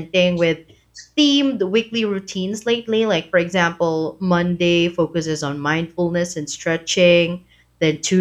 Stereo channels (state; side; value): identical; both; correlation 1.00